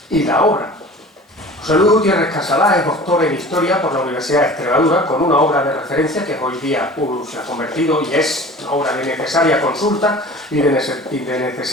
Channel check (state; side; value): normal; both; correlation 0.41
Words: y la obra. José Luis Gutiérrez Casalá es doctor en Historia por la Universidad de Extremadura, con una obra de referencia que hoy día se ha convertido y es una obra de necesaria consulta y de